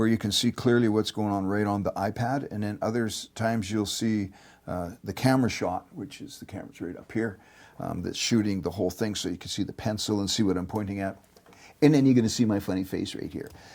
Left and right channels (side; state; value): both; identical; correlation 1.00